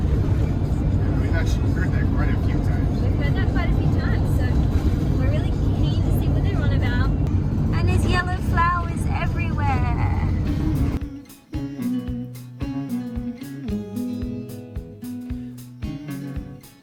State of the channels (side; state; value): both; identical; correlation 1.00